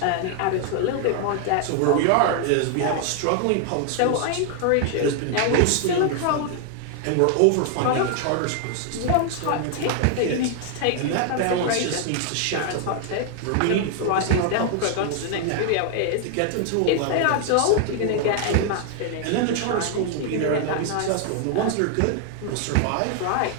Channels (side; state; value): both; different; correlation 0.00